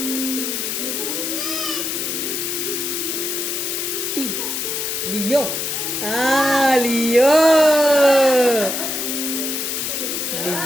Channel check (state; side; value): noise; left; hiss, 2 dB below the sound